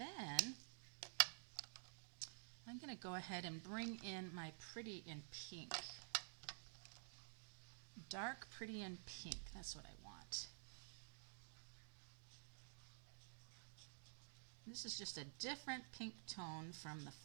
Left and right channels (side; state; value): left; silent; digital silence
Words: I'm going to go ahead and bring in my Pretty in Pink. Dark Pretty in Pink, that's what I want. This is just a different pink tone from the